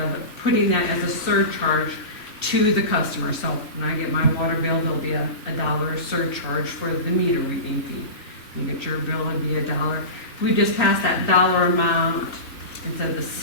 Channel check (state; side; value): late; right; 2.7 ms